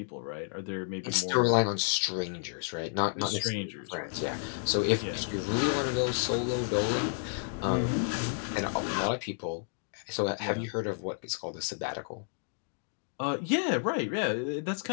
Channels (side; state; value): right; silent; digital silence